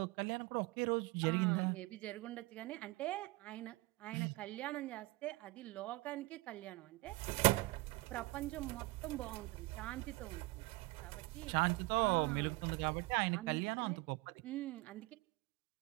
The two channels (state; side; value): quieter; left; 22.5 dB